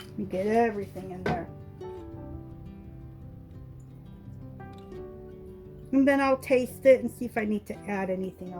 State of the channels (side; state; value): both; identical; correlation 1.00